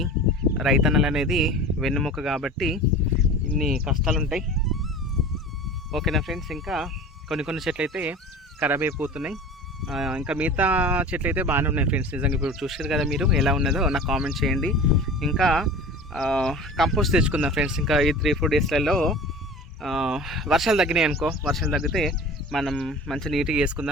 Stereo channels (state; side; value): normal; both; correlation 0.38